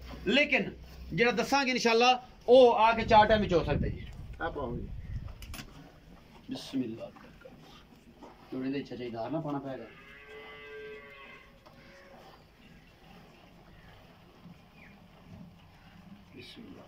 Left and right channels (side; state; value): both; identical; correlation 1.00